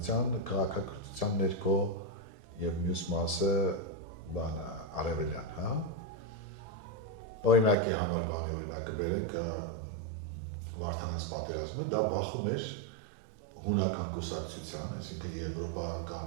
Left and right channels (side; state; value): left; drops out; at 7.8 s